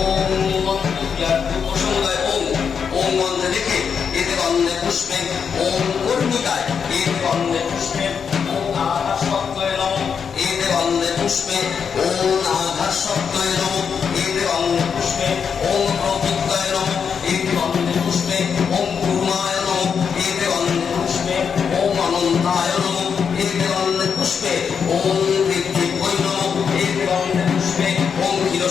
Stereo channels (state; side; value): quieter; right; 6.7 dB